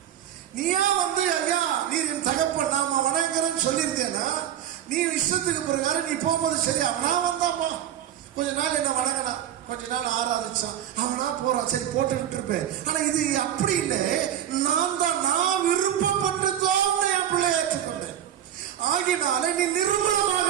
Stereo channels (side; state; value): left; quieter; 10.7 dB